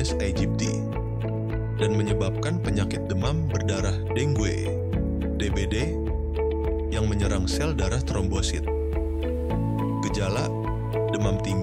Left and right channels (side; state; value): both; identical; correlation 1.00